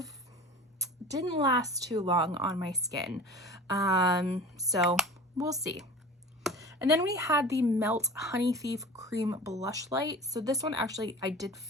didn't last too long on my skin. So we'll see. And then we had the Melt Honey Thief Cream Blush Light. So this one actually I did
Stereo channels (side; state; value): both; normal; correlation 0.37